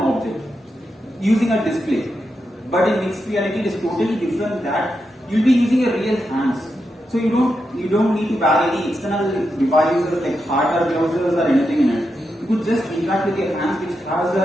using a display. But in mixed reality, it is totally different. That you'll be using a real hands. So you don't need to buy any external devices like hardware gloves or anything in it. You could just interact with your hands, which has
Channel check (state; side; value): normal; both; correlation 0.86